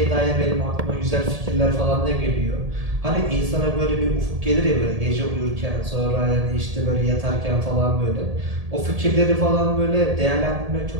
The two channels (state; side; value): late; left; 1.7 ms